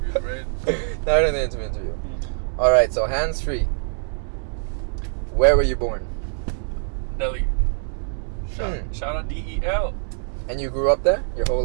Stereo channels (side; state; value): left; silent; digital silence